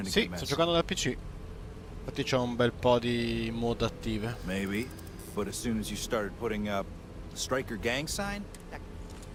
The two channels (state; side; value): identical; both; correlation 1.00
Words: to Sì, get messy. sto giocando dal PC. Infatti c'ho un bel po' di mod attive. Maybe, but as soon as you started putting up the Striker gang sign,